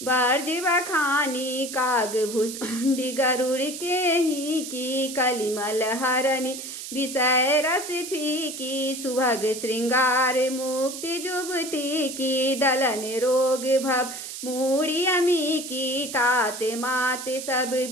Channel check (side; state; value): right; noise; hiss, 9 dB below the sound